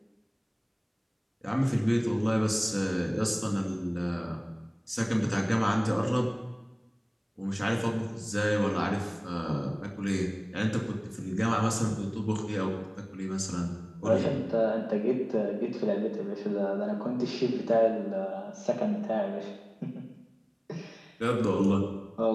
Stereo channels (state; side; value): identical; both; correlation 1.00